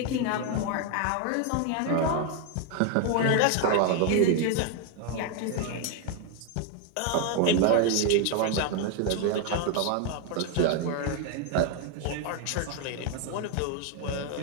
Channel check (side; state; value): both; different; correlation 0.01